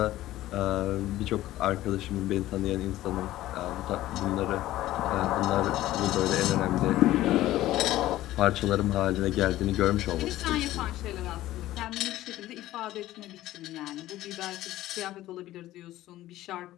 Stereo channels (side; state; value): right; quieter; 15.2 dB